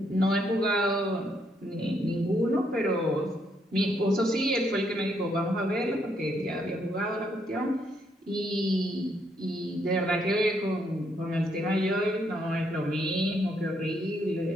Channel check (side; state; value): both; normal; correlation 0.74